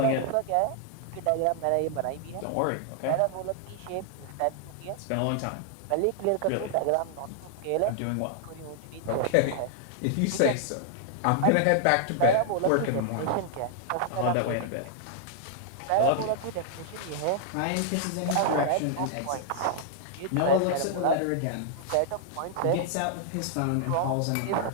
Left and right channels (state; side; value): different; both; correlation -0.01